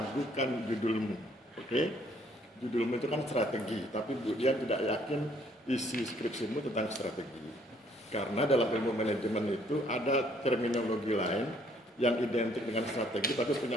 judulmu, oke? Judulmu itu kan strategi, tapi Bu Dian tidak yakin isi skripsimu tentang strategi. Karena dalam ilmu manajemen itu ada terminologi lain yang identik dengan strategi tapi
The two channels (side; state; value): both; normal; correlation 0.64